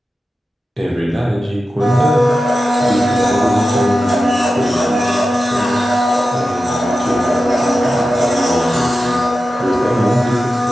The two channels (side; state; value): both; normal; correlation 0.92